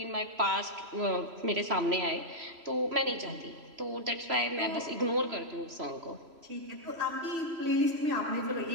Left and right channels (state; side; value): late; left; 3.0 ms